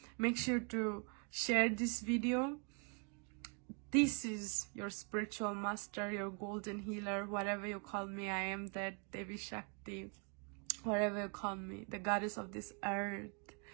Make sure to share this video. This is your spiritual master, your golden healer, whatever you call me. I am that Devi Shakti, whatever you call me, the goddess of this earth,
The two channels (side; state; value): left; quieter; 36.1 dB